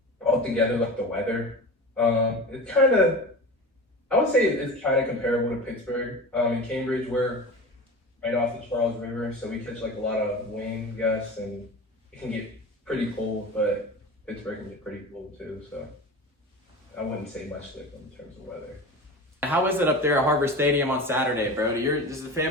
altogether, like the weather, it's kind of, I would say it's kind of comparable to Pittsburgh. In Cambridge, we're right off the Charles River, so we catch like a lot of wind gusts, and it can get pretty cold, but Pittsburgh can get pretty cold too. So I wouldn't say much different in terms of weather. How is it up there at Harvard Stadium on Saturday, bro? Does the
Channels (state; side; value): normal; both; correlation 0.31